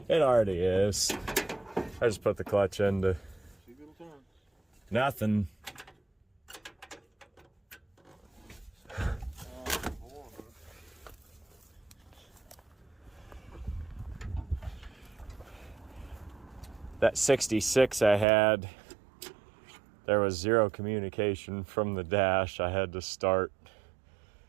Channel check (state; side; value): drops out; left; at 18.2 s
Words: it already is. I just put the clutch into See if it'll turn. nothing. That 66 I had, there was zero communication from the dash. I had to start